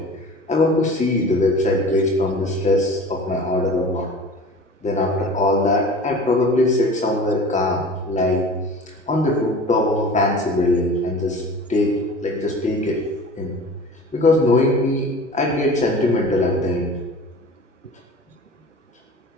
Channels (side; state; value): both; normal; correlation 0.40